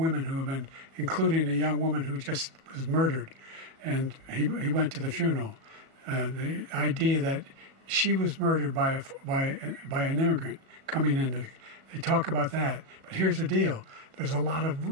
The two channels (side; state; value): left; late; 37 ms